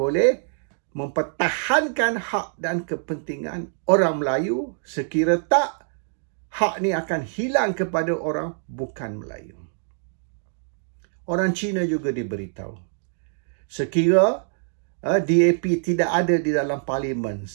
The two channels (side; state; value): left; silent; digital silence